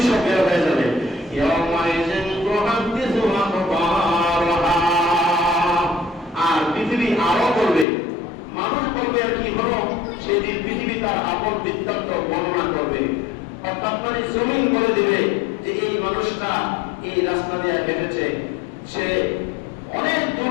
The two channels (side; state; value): right; drops out; at 7.9 s